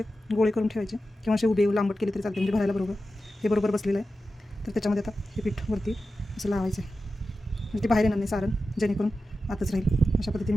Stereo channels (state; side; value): normal; both; correlation 0.92